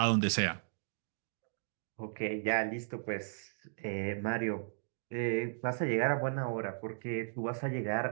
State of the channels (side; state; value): left; silent; digital silence